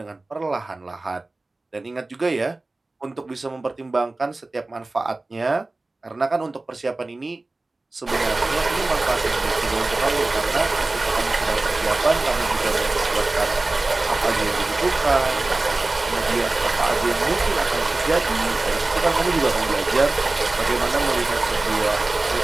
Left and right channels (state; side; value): quieter; left; 3.1 dB